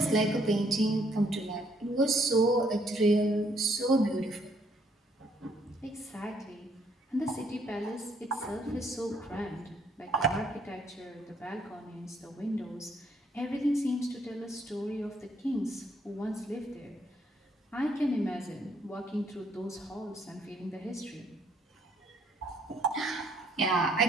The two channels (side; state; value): both; normal; correlation 0.68